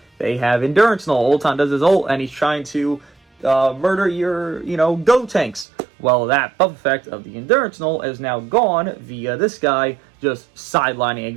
they have endurance null. Ultan does his ult and he's trying to murder your, Go tanks. Well, that buff effect of the endurance null is now gone via this guy just sidelining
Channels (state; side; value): drops out; left; at 5.7 s